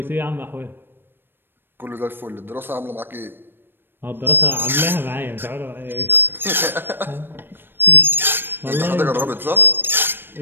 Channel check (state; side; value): late; left; 0.099 ms